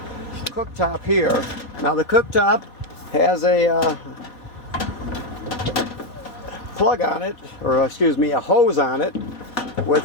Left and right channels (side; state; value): right; late; 4.1 ms